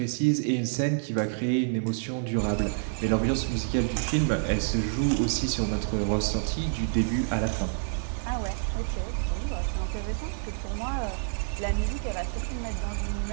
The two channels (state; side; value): silent; left; 59 dB below the other